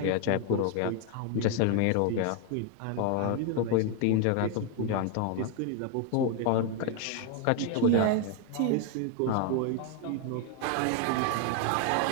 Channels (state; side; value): different; both; correlation 0.01